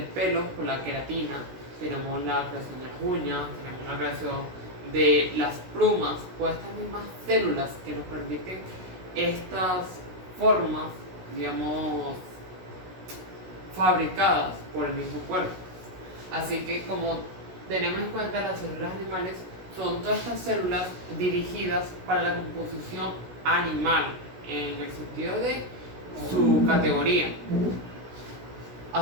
pelo con la queratina, tenemos la creación de las uñas, tenemos la creación de las plumas, por estas mismas células que nos permiten estas formas, digamos, fabricadas por el mismo cuerpo. Así que, como tenemos en cuenta, las células animales son todas estas células dirigidas para la composición animal, en el sentido de su categoría. A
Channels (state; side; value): late; left; 16 ms